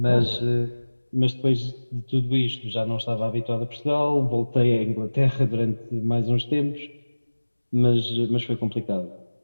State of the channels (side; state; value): both; inverted; correlation -1.00